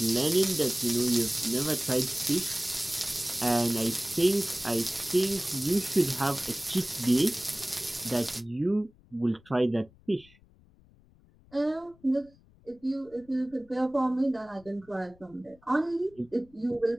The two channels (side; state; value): left; noise; rumble, 28 dB below the sound